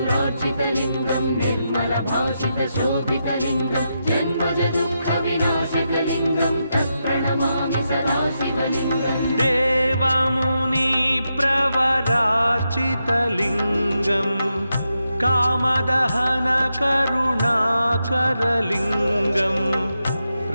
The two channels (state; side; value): inverted; both; correlation -0.85